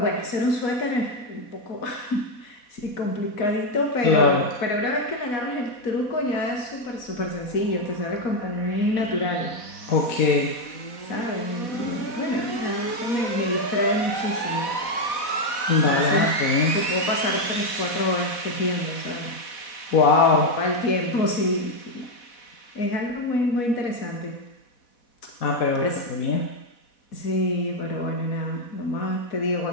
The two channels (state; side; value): late; right; 4.1 ms